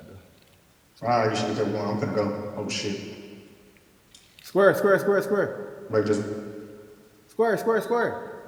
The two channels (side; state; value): both; identical; correlation 1.00